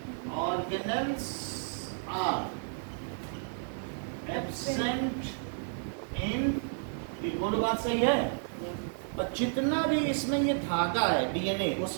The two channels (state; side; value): silent; left; digital silence